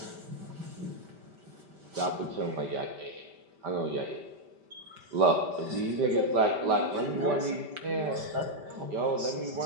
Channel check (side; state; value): left; late; 5.1 ms